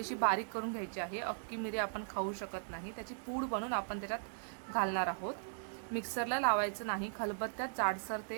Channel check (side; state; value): left; silent; digital silence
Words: बारीक करून घ्यायची आहे. अख्खी मिरी आपण खाऊ शकत नाही, त्याची पूड बनवून आपण त्याच्यात घालणार आहोत. मिक्सरला लावायचं नाही, खलबत्त्यात जाडसर